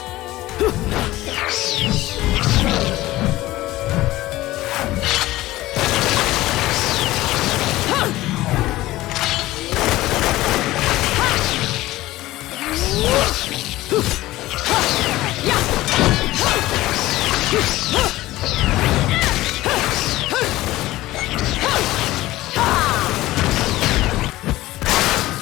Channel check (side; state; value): right; quieter; 17.1 dB